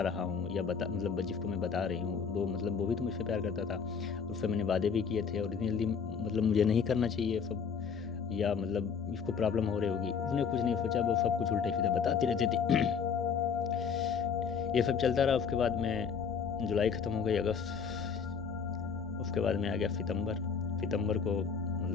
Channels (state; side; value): quieter; right; 6.4 dB